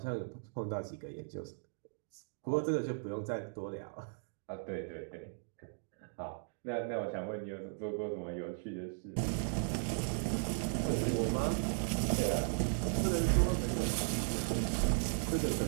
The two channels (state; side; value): silent; left; digital silence